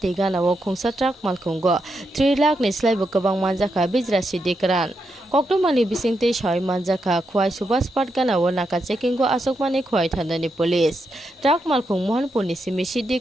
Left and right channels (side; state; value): both; normal; correlation 0.83